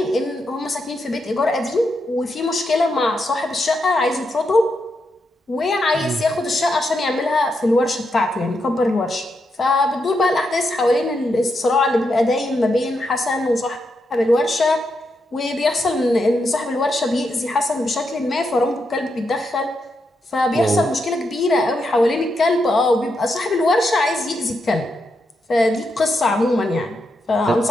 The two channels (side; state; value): both; normal; correlation 0.83